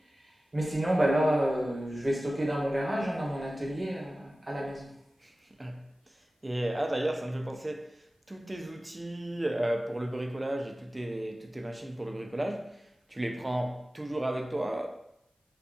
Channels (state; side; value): normal; both; correlation 0.96